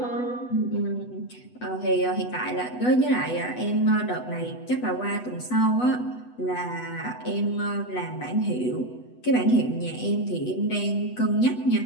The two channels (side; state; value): right; late; 8.1 ms